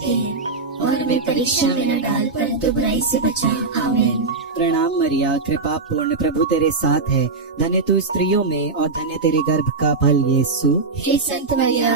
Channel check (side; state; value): left; quieter; 3.9 dB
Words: हैं, और हमें परीक्षा में न डाल परंतु बुराई से बचा, आमीन। प्रणाम मरिया, कृपा पूर्ण, प्रभु तेरे साथ है, धन्य तू स्त्रियों में और धन्य तेरे गर्भ का फल यीशु। हे संत